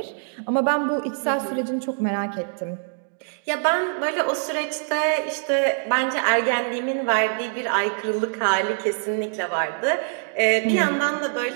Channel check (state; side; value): silent; left; digital silence